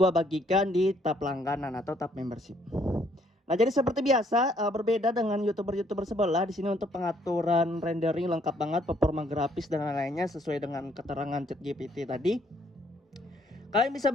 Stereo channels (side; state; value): both; normal; correlation 0.67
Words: bagikan di tab langganan atau tab membership. Nah, jadi seperti biasa, berbeda dengan YouTuber-YouTuber sebelah, di sini untuk pengaturan rendering lengkap banget, performa grafis dan lain-lainnya sesuai dengan keterangan ChatGPT tadi. Kalian bisa